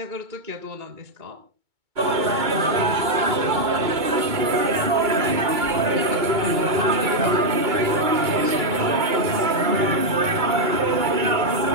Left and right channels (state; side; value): late; left; 2.2 ms